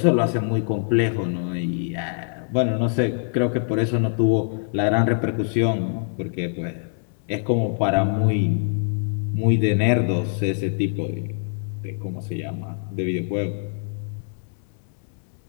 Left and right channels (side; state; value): right; silent; digital silence